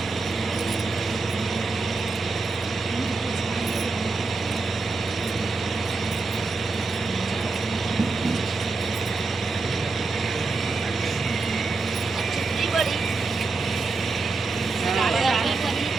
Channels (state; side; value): quieter; left; 3.9 dB